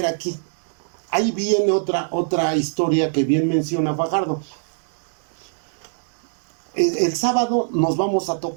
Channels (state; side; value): silent; left; digital silence